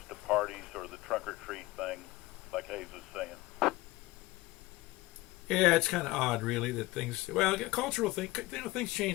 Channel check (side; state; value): right; quieter; 19.7 dB